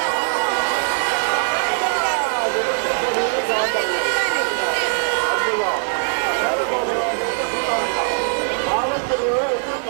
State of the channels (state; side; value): silent; left; digital silence